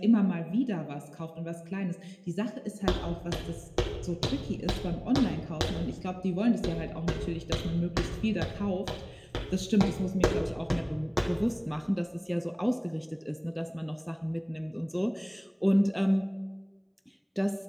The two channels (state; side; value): identical; both; correlation 1.00